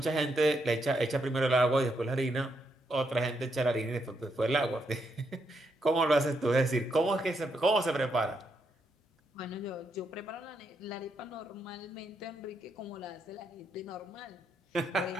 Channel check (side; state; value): both; normal; correlation 0.79